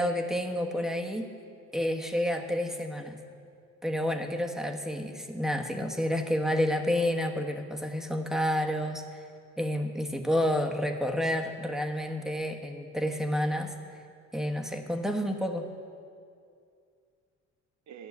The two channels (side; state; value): both; normal; correlation 0.80